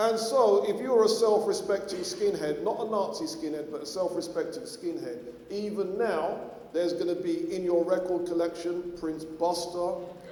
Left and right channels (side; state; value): both; identical; correlation 1.00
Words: so, if you're a self-respecting skinhead, not a Nazi skinhead, but a self-respecting skinhead, even now, there's going to be in your record collection Prince Buster,